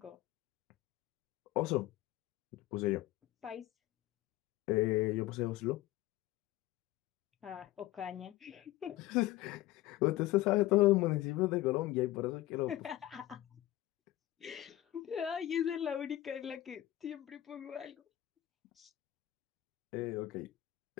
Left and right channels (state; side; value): quieter; right; 15.3 dB